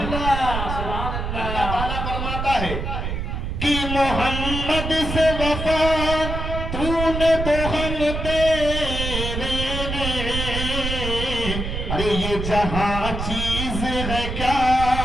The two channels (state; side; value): noise; right; rumble, 4 dB below the sound